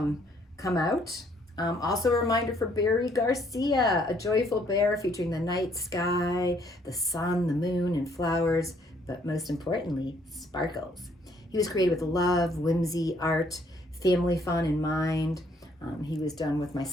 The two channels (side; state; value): both; normal; correlation 0.66